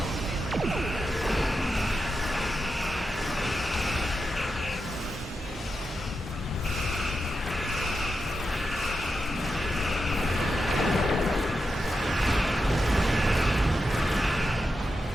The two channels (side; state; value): both; normal; correlation 0.88